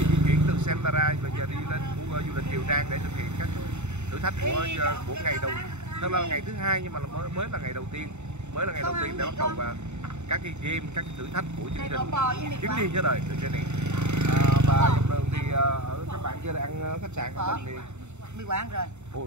chuyển từ Sempara và giờ đi lên khu du lịch Kiều Trang để thực hiện các thử thách của ngày đầu. Thật là ngày thứ hai nhưng mà mới là ngày đầu tiên, để bắt đầu vào các cái game, các cái thử thách của chương trình chuyến đi với đời The Journey. Và dọc đường thì ở các bạn chưa ăn khách sạn của mình thì Mì Quảng rồi.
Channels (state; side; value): late; left; 0.82 ms